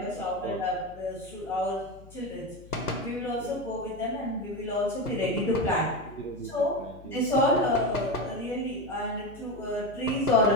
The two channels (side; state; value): left; noise; hum, 20 dB below the sound